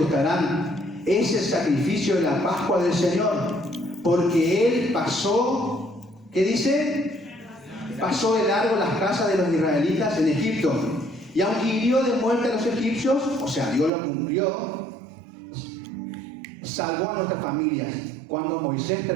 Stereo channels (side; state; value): left; drops out; at 13.9 s